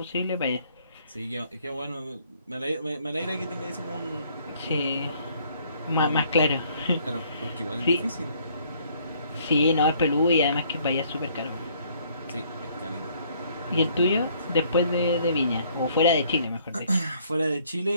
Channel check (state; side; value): inverted; both; correlation -0.63